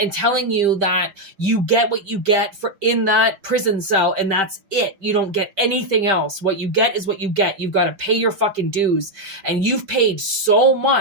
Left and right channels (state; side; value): late; left; 5.1 ms